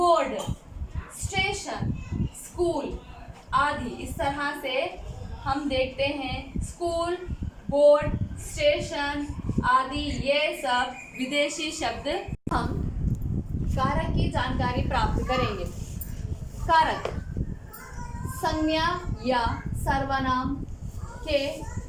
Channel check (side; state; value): both; identical; correlation 1.00